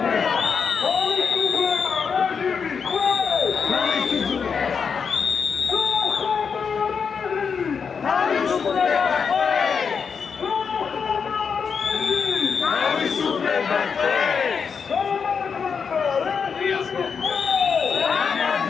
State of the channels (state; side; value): quieter; right; 6.1 dB